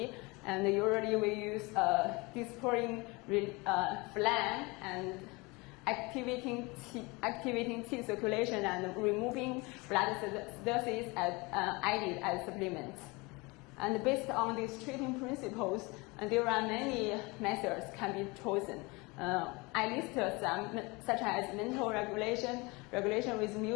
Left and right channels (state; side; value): quieter; right; 25.7 dB